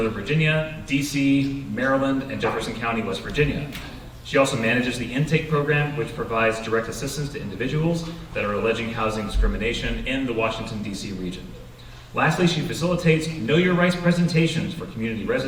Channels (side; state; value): both; identical; correlation 1.00